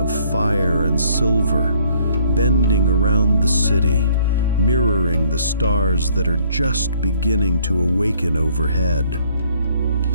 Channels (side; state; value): both; inverted; correlation -0.63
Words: fire and silver, bending around the city, mirroring the stars that are just beginning to awaken overhead.